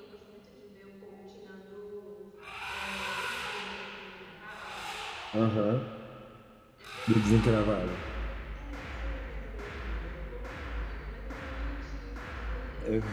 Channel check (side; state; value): both; identical; correlation 1.00